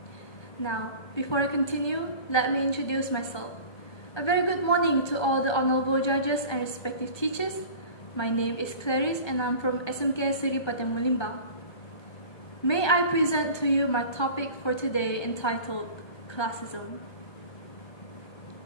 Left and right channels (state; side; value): late; right; 1.3 ms